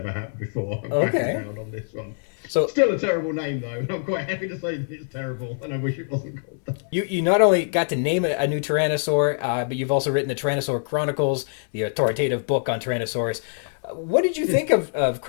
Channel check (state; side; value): silent; right; digital silence